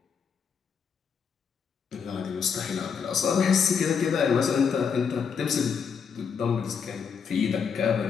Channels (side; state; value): right; quieter; 6.5 dB